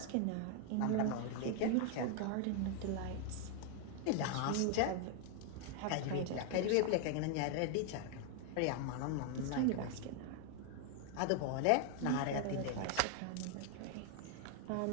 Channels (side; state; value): both; different; correlation 0.00